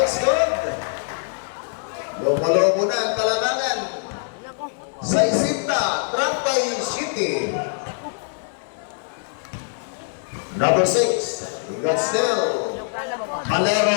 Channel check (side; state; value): right; silent; digital silence